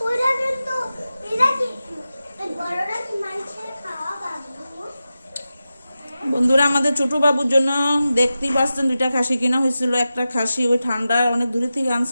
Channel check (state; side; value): inverted; both; correlation -0.93